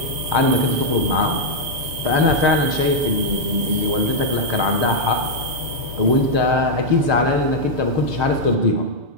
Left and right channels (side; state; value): left; late; 6.9 ms